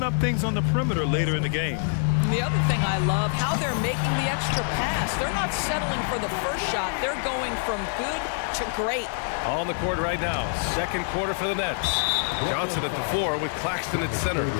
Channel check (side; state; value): right; silent; 61 dB below the other